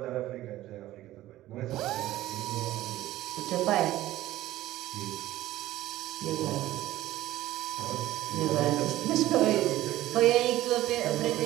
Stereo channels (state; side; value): quieter; left; 15.3 dB